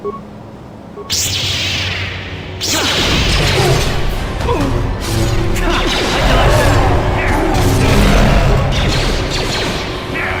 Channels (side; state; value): both; identical; correlation 1.00